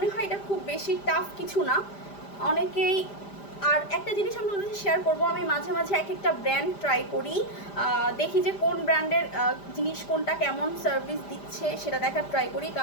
হয় এটা খুব বেশি টাফ কিছু না, অনেকেই। আর একটা জিনিস আমি তোমাদের শেয়ার করবো, আমি মাঝে মাঝে এক একটা ব্র্যান্ড ট্রাই করি, দেখি যে কোন ব্র্যান্ডের জিনিস কোনটা কেমন সার্ভিস দিচ্ছে সেটা দেখার ট্রাই করি,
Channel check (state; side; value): late; right; 5.0 ms